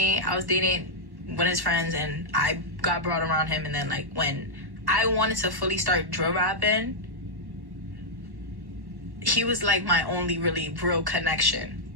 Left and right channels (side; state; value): left; late; 1.1 ms